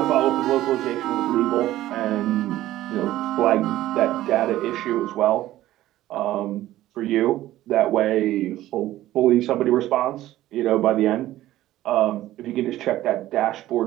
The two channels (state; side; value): quieter; left; 14.8 dB